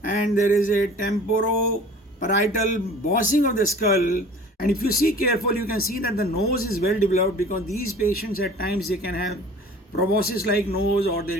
and there is a temporoparietal bossing of the skull. And if you see carefully, you can see that the nose is well developed, because these patients at times they can have proboscis like nose, or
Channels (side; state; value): both; normal; correlation 0.45